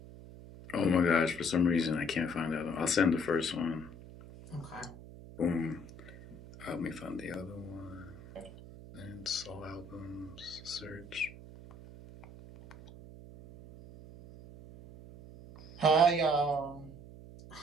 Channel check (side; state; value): right; noise; hum, 16 dB below the sound